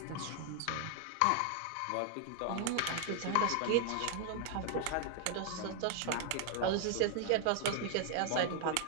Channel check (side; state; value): both; different; correlation 0.00